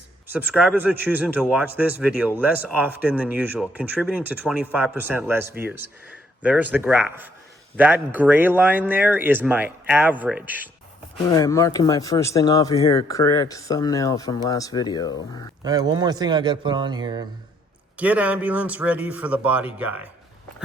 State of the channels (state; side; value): normal; both; correlation 0.68